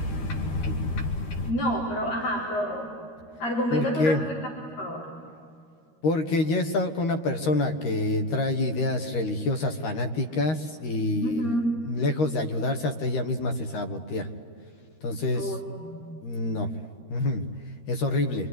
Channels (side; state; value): right; late; 13 ms